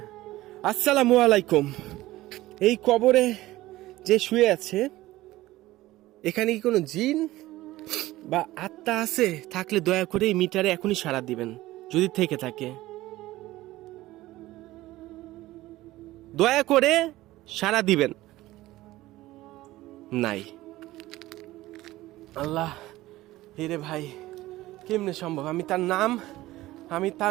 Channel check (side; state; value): left; quieter; 17.1 dB